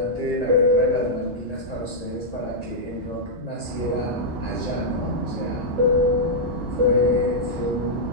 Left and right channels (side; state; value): both; normal; correlation -0.07